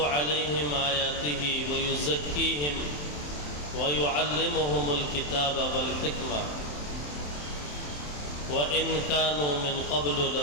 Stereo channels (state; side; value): late; right; 27 ms